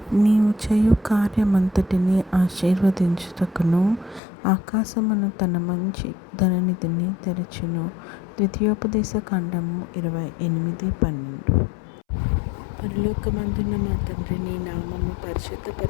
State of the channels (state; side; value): drops out; right; at 4.2 s